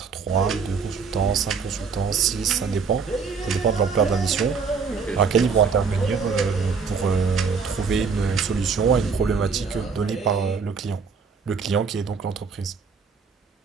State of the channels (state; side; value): quieter; left; 5.4 dB